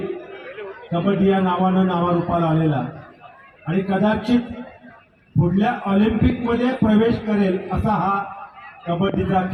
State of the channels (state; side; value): identical; both; correlation 1.00